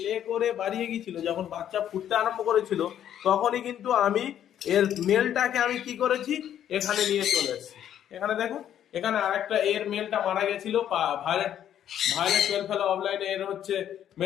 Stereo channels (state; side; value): quieter; right; 10.4 dB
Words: লে করে বাড়িয়ে গিয়েছিল, যখন বাচ্চা ফুটতে আরম্ভ করেছিল, তখনই কিন্তু আমি এর মেলটাকে আমি কি করেছি, এখানে নিয়ে চলে এসেছি। এখানে দেখুন, এখানে আরেকটা এর মেলটা মারা গেছিল, ভায়োলেট ভায়োলেট পেল ফেলো অফলাইনে এর হচ্ছে